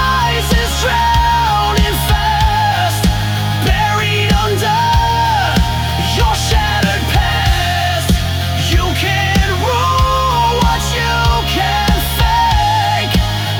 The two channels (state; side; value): identical; both; correlation 1.00